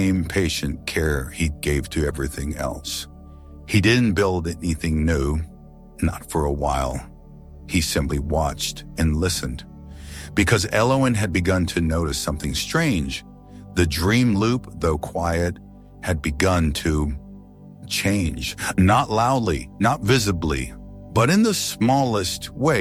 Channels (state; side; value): identical; both; correlation 1.00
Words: patient care he gave to everything else. He didn't build anything new, not for a while. He simply watched and listened. Because Elowen had begun to notice something strange. The dream loop, though quiet, had begun to change. Not loudly, not visibly, but in the smallest